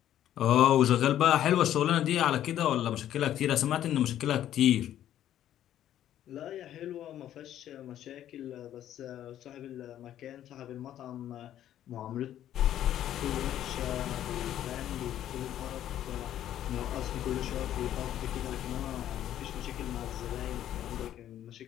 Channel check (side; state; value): right; quieter; 11.6 dB